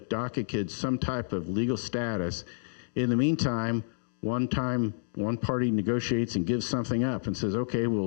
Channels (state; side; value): silent; right; digital silence